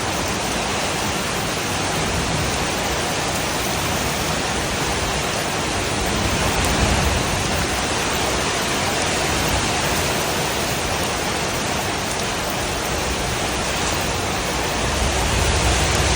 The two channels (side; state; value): both; identical; correlation 1.00